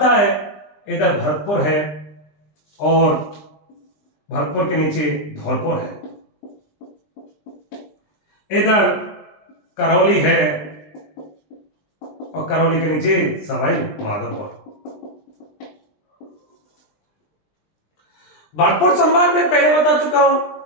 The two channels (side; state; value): right; late; 20 ms